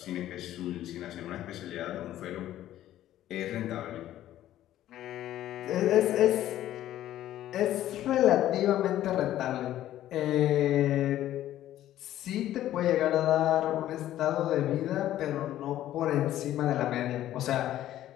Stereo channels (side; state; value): right; quieter; 13.0 dB